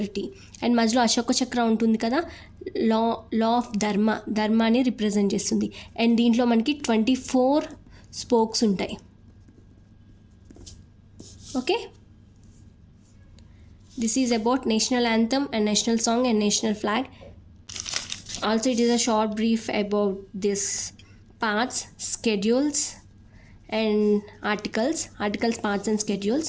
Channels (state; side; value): identical; both; correlation 1.00